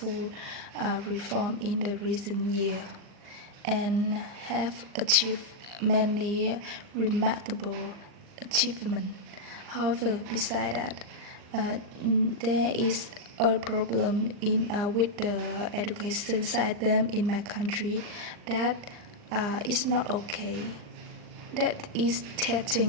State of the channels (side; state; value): left; late; 39 ms